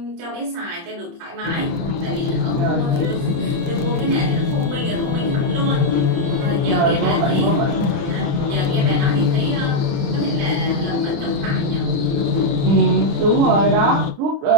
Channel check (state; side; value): late; left; 29 ms